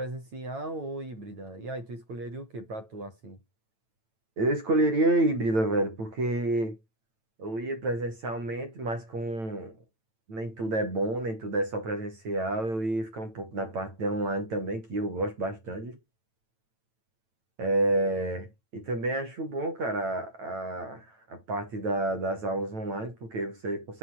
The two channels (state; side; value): late; left; 9.0 ms